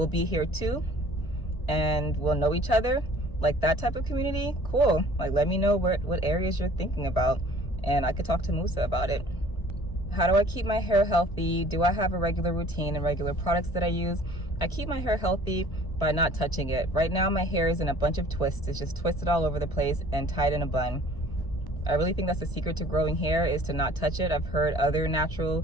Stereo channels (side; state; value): right; late; 1.0 ms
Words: be here too, and we'll know each other. Like that type of community, cool. Like, let me know what areas you're thinking about, and I could talk to Musa about it. How do I keep my hair healthy? Do I have a regular routine and regular products that I use? I keep my hair healthy by not touching it. Right now my hair is in a bunch of twists. It's just twisted all over the place and tied in a bun. I really think that's the secret to growing hair, is to not touch it. I've heard other natural